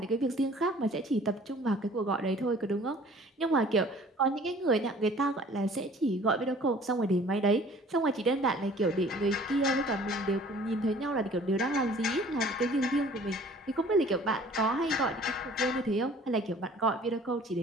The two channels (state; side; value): normal; both; correlation 0.51